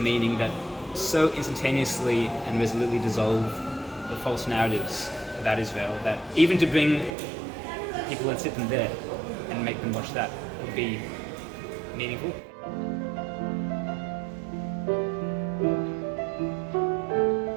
that so instantaneously and resolutely dissolve the false narratives about Israel that even to bring people and sit them there and make them watch that would be meaningful.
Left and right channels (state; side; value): drops out; left; at 7.1 s